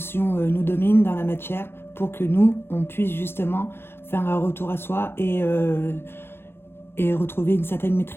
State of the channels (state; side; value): late; right; 0.11 ms